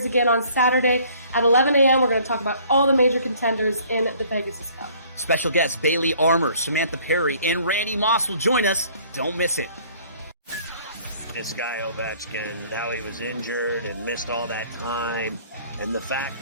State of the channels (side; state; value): both; inverted; correlation -0.56